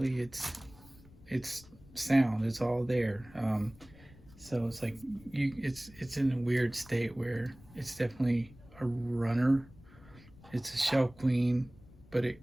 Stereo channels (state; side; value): noise; left; rumble, 23 dB below the sound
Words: it's sound. It's all there. So it's like it's in a weird state where it's definitely a runner. It's a shelf queen, but it